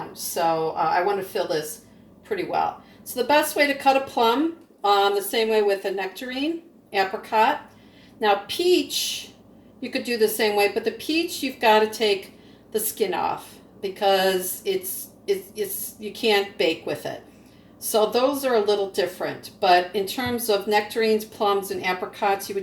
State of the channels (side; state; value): both; identical; correlation 1.00